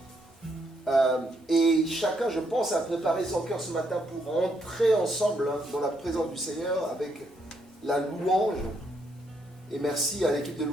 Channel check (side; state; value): both; normal; correlation 0.75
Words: Et chacun, je pense, a préparé son cœur ce matin pour entrer ensemble dans la présence du Seigneur avec la louange. Et merci à l'équipe de